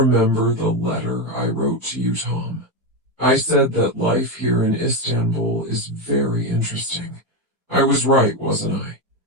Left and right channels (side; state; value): both; normal; correlation 0.11